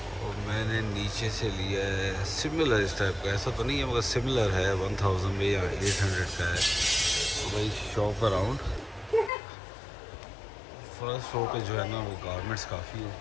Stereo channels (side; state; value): right; drops out; at 9.3 s